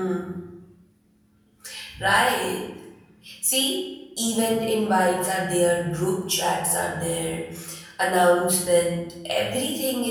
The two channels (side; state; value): both; identical; correlation 1.00